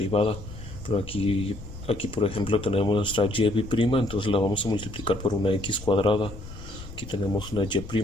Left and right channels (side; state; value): left; noise; rumble, 13 dB below the sound